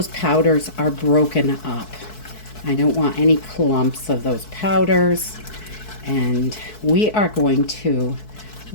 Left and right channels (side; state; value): right; late; 4.6 ms